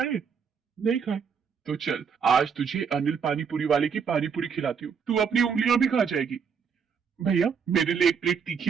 नहीं खाए? तो चल, आज तुझे अनिल पानीपुरी वाले की पानीपुरी खिलाती हूँ, तू अपनी उंगलियां भी खा जाएगी। भैया, मेरे लिए एक प्लेट तीखी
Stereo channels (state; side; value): quieter; left; 6.5 dB